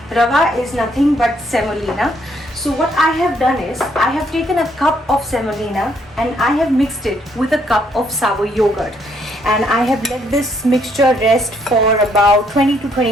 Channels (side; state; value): both; normal; correlation 0.70